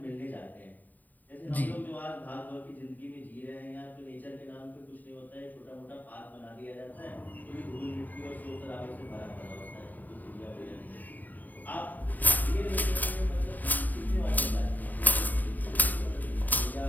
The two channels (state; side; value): late; right; 0.084 ms